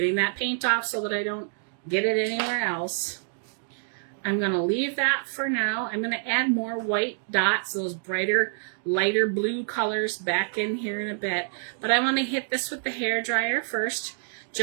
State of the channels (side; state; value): left; silent; digital silence